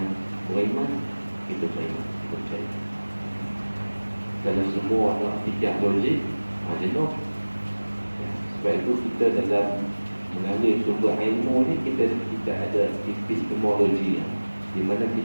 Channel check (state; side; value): inverted; both; correlation -1.00